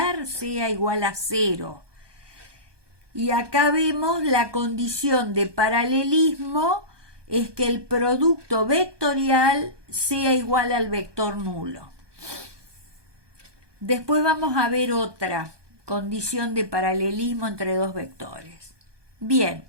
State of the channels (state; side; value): late; left; 1.2 ms